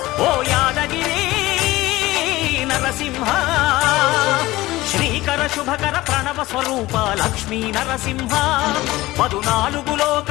ఓ యాదగిరి నరసింహ శ్రీకర శుభకర ప్రణవ స్వరూప లక్ష్మీ నరసింహ 14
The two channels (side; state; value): right; quieter; 18.3 dB